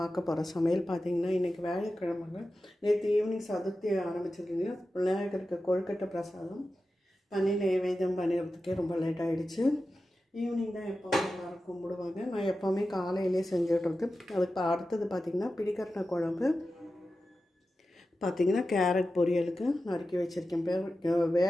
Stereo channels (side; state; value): both; normal; correlation 0.93